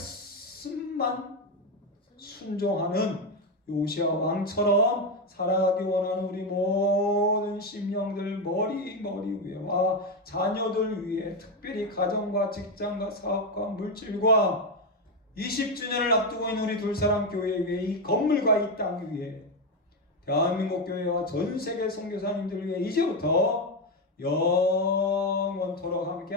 순종하는 요시아 왕처럼 살아가기 원하는 우리 모든 심령들 머리 위에와 자녀들 위에, 특별히 가정과 직장과 사업과 물질과 20주년을 앞두고 있는 우리 둘사람 교회 위에, 이 건물과 이 땅 위에, 대한민국 교회와 전 세계 선교사님들 위해 이제부터 영원토록 함께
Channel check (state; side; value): normal; both; correlation 0.09